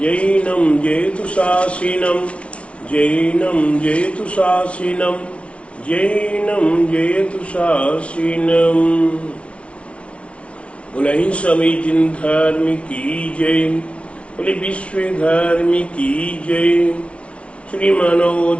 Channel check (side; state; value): right; late; 0.061 ms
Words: जयतु शासिनम जैनम जयतु शासिनम जैनम जयतु शासिनम। बोले सभी जिन धर्म की जय, बोले विश्व धर्म की जय, श्री मानव